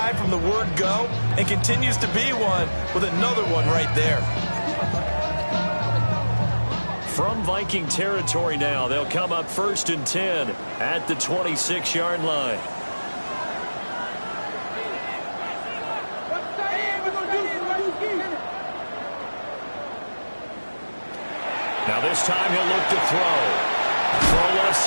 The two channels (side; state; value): both; inverted; correlation -1.00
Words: from the word go and continues to be one with another one right there. From Viking territory now, they'll come up 1st and 10 at the 26-yard line. Now this time he'll look to throw. Throw left